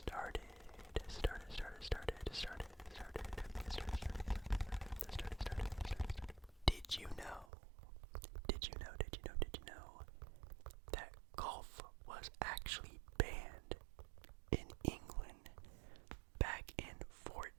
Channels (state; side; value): drops out; left; at 7.5 s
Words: Did you know that golf was actually banned in England back in